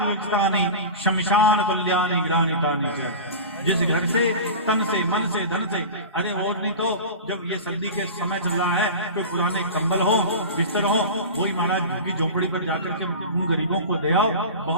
शमशान तुल्यानि ग्रानितानि च। जिस घर से तन से मन से धन से, अरे और नहीं तो जब ये सर्दी के समय चल रहा है तो पुराने कंबल हो बिस्तर हो वही महाराज झुग्गी झोपड़ी पर जाकर के उन गरीबों को दे आओ,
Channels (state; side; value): inverted; both; correlation -0.30